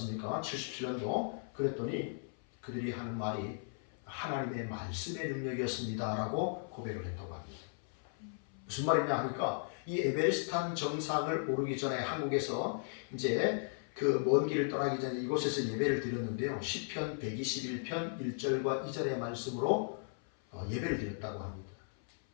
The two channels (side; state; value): right; silent; 54 dB below the other